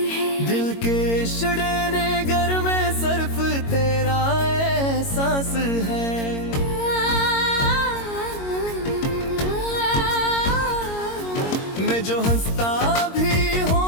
है, दिल के शड़ेने घर में सिर्फ तेरा एहसास है। मैं जो हंसता भी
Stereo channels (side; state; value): right; late; 22 ms